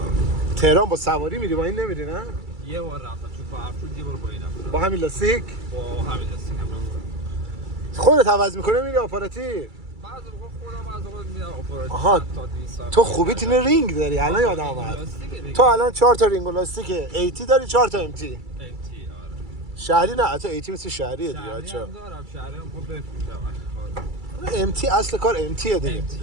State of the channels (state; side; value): late; left; 2.3 ms